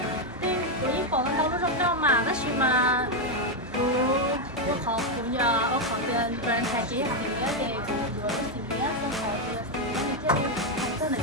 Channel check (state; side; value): normal; both; correlation 0.03